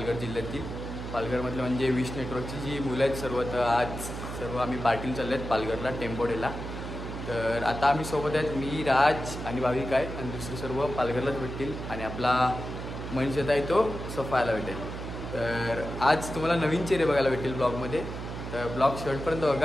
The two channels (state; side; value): noise; right; hum, 7 dB below the sound